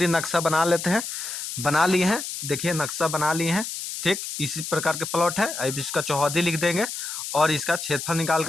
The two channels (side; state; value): left; noise; hiss, 6 dB below the sound